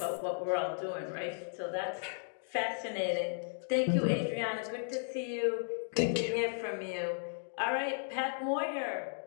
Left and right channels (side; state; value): right; silent; digital silence